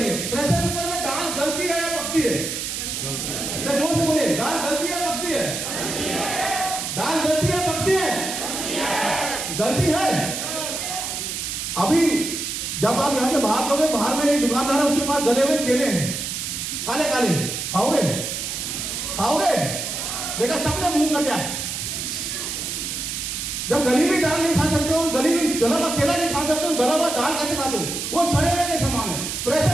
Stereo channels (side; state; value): right; noise; hiss, 4 dB below the sound